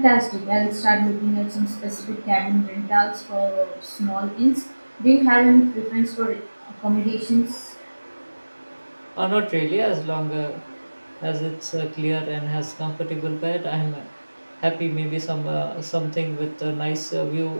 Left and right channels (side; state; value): both; inverted; correlation -1.00